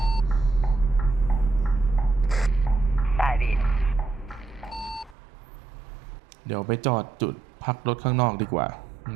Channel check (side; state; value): left; drops out; at 5.2 s